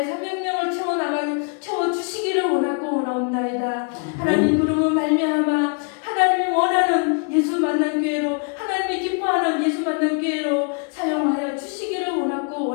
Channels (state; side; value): quieter; right; 38.4 dB